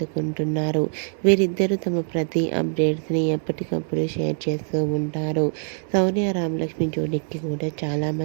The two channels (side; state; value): left; silent; 63 dB below the other